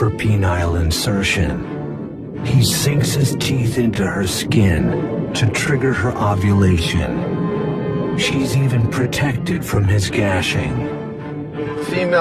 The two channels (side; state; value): both; identical; correlation 1.00